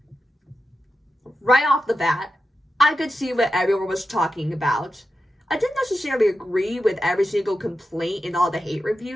Right off the bat, I could see what everyone was talking about. I didn't necessarily agree with every single complaint in all the hate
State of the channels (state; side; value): normal; both; correlation 0.90